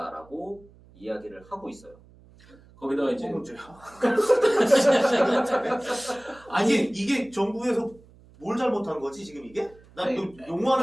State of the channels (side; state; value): right; noise; hum, 26 dB below the sound